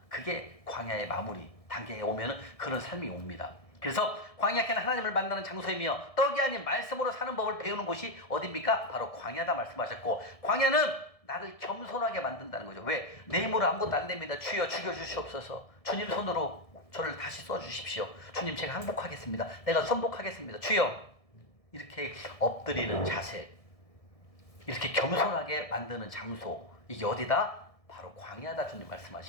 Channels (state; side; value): late; right; 1.7 ms